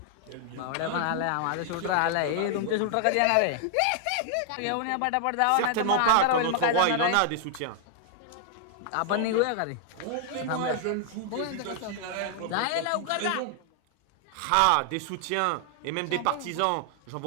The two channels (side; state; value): both; different; correlation 0.00